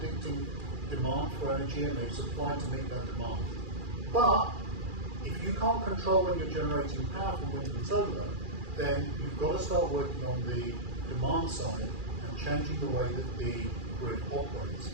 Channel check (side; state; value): left; late; 2.4 ms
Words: demand for energy, and they've supplied to meet that demand. But if you can't control when you're generating power from wind and solar, then you've got to start working on the demand side and changing the way that the grid operates.